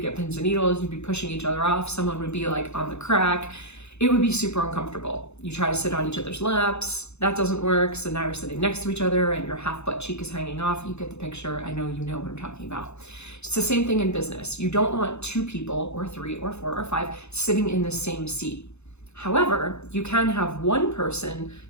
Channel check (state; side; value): late; right; 0.81 ms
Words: pins and needles, you'd be pushing each other off. Someone would be like on the crack. It would be super uncomfortable. You try to sit on each other's laps, that doesn't work. So now you're sitting next to each other and your half butt cheek is hanging off. You get the picture. I know you know what I'm talking about. It's the same thing in business. You don't want two people or three or four or five sitting in the same seat. However, you can have one person